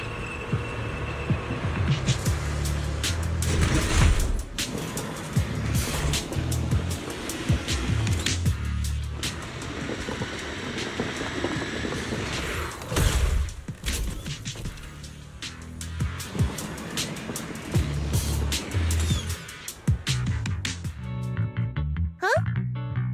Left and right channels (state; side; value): identical; both; correlation 1.00